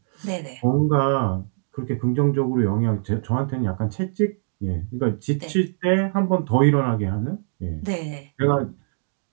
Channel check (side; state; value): left; silent; digital silence